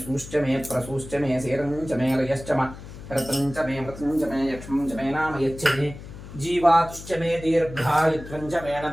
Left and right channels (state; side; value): noise; left; hum, 14 dB below the sound